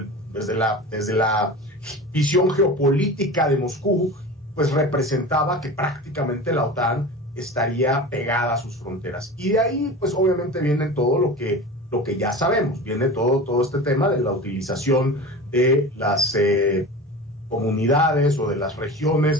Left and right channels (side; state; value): both; normal; correlation 0.32